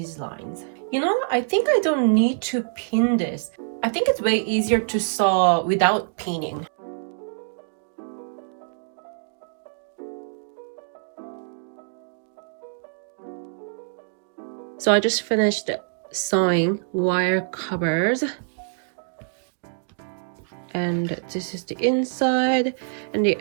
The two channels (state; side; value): silent; left; digital silence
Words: lines. You know, I think I don't need to pin this. I think it's way easier to sew without pinning. So I just finished sewing wire covers, and this is the inside, and the